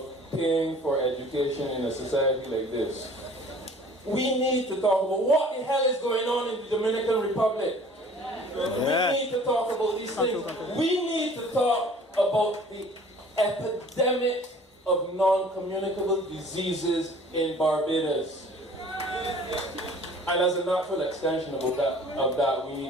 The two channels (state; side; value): normal; both; correlation 0.50